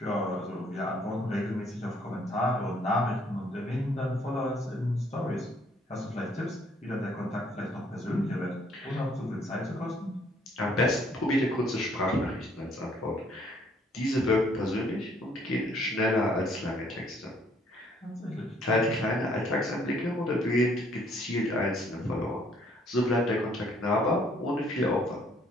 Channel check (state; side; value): normal; both; correlation 0.64